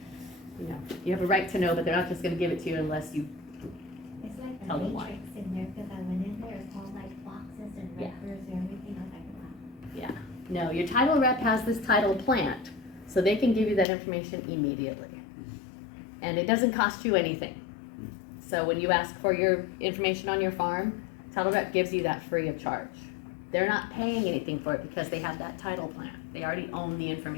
You know, you have a right to know, but they're not just gonna give it to you unless you, It's like Tell a them why. matrix in there, cause I went in there, it's all like boxes and Yeah. records and everything, I was like, wow. no, your title rep has this title plant, so they can give you that information immediately. And it doesn't cost you anything. So when you ask for your information on your farm, title rep gives you that free of charge. They're not paying anything for it because they have that title plant. They already own the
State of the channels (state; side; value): drops out; right; at 13.9 s